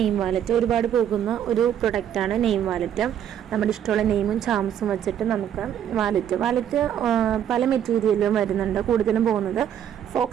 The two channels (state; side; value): quieter; left; 9.8 dB